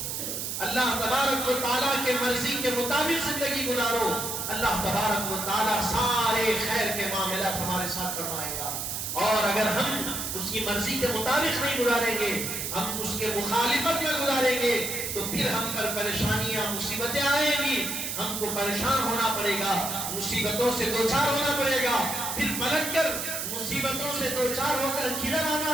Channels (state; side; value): noise; right; hiss, 3 dB below the sound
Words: اللہ تبارک و تعالیٰ کے مرضی کے مطابق زندگی گزارو، اللہ تبارک و تعالیٰ سارے خیر کے معاملات ہمارے ساتھ فرمائے گا۔ اور اگر ہم اس کی مرضی کے مطابق نہیں گزاریں گے، ہم اس کے مخالفت میں گزاریں گے، تو پھر ہم پر پریشانیاں مصیبتیں آئیں گی، ہم کو پریشان ہونا پڑے گا، مصیبتوں سے دوچار ہونا پڑے گا، پھر پلٹ کر مصیبتوں سے دوچار ہو کر کدھر